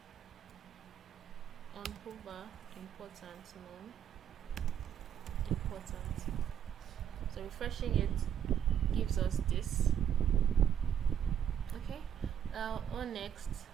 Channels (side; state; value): left; quieter; 9.2 dB